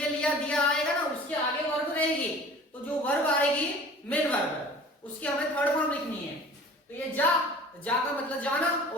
लिया, दिया आएगा ना, उसके आगे वर्ब रहेगी। तो जो वर्ब आएगी मेन वर्ब, उसकी हमें थर्ड फॉर्म लिखनी है। तो ये जा का मतलब जाना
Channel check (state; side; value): normal; both; correlation 0.44